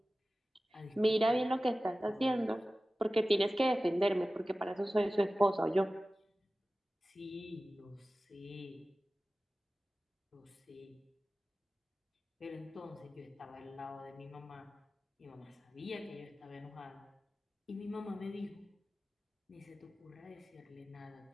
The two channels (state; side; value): normal; both; correlation 0.96